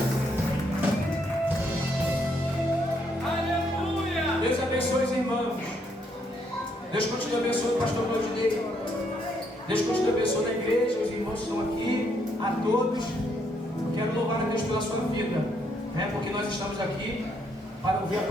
Deus abençoe os irmãos. pastor Claudinei. Deus continue abençoando a igreja, os irmãos que estão aqui, a todos. Eu quero louvar a Deus pela sua vida, né? Porque nós estamos aqui para ouvir a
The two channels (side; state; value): both; normal; correlation 0.73